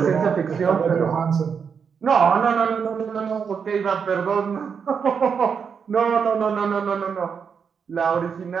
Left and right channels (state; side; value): quieter; left; 6.5 dB